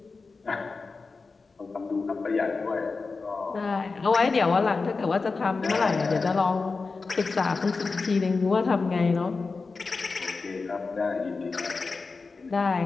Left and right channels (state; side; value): quieter; right; 4.2 dB